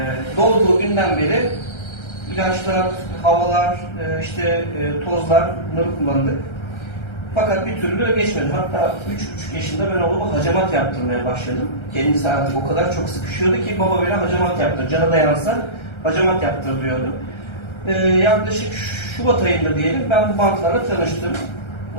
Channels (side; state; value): right; late; 1.3 ms